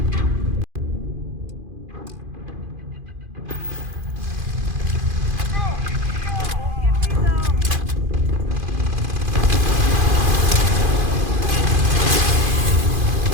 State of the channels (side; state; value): left; late; 2.5 ms